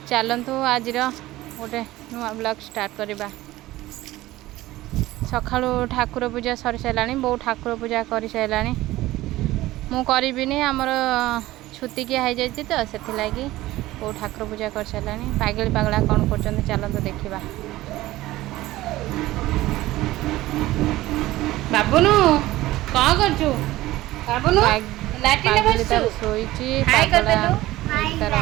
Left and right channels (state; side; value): quieter; left; 17.0 dB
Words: चलतु आज गोटे नुआ ब्लॉग स्टार्ट करवा। सका ठाकुर पूजा सरी सारा बो ठाकुर पूजा कर सारा मु करी आमर छुतिकिया हो जाए तो से लगी बो ठाकुर पूजा कर सारा। पागल पागला कौन कर चलतु देखा। बाबुनु कौन करछु? बाबुनु लाटिन बसछु सोईची पागला तार